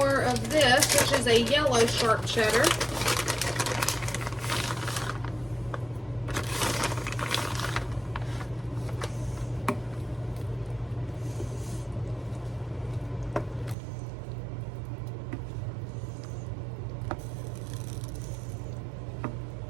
of this, which is a yellow sharp cheddar.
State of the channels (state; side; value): drops out; left; at 13.8 s